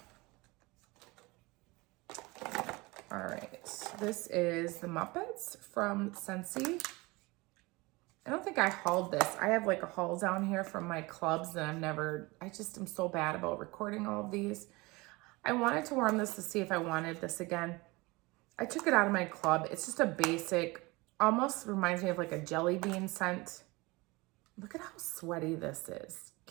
All right, this is the Muppets from Scentsy. I don't think I hauled this. I have like a haul down here from my clubs and I just am so bad about recording all of these. I wanted to warm this to see if I wanted this again. I took it out of my club. It's just a basic, almost reminds me of like a jelly bean scent. Look at how sweaty this is.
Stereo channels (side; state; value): left; quieter; 23.7 dB